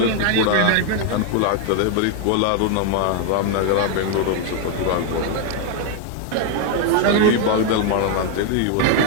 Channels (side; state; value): both; different; correlation 0.00